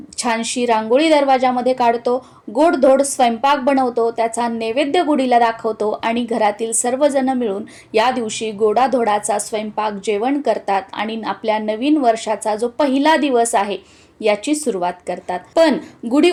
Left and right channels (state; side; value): identical; both; correlation 1.00